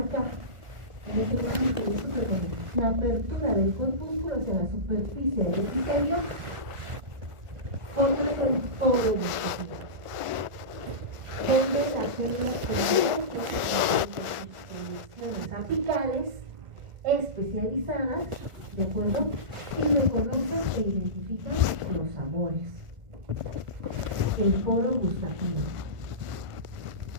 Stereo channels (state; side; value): late; left; 1.4 ms